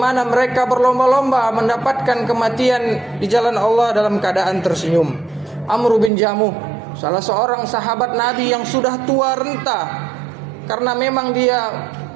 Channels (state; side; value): drops out; left; at 6.1 s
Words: mereka berlomba-lomba mendapatkan kematian di jalan Allah dalam keadaan tersenyum. Amr bin Jamuh, salah seorang sahabat Nabi yang sudah tua renta, karena memang dia